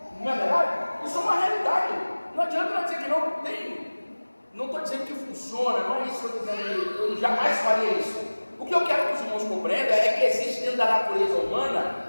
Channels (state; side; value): inverted; both; correlation -1.00